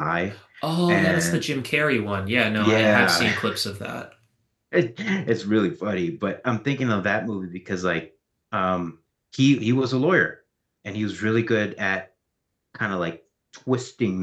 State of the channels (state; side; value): identical; both; correlation 1.00